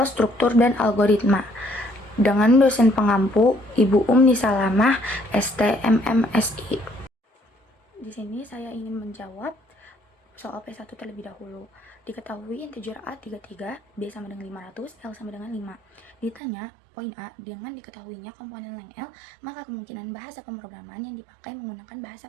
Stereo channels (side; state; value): left; drops out; at 16.4 s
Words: Struktur dan Algoritma dengan dosen pengampu Ibu Umni Salamah, STMMSI. Di sini saya ingin menjawab soal P1 terlebih dahulu. Diketahui integer A 33, B sama dengan 500, L sama dengan 5. Ditanya, poin A, dengan diketahuinya komponen leng L, maka kemungkinan bahasa pemrograman yang dipakai menggunakan bahasa